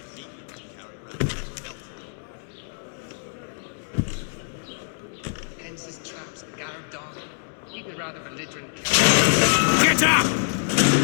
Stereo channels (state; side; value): silent; right; digital silence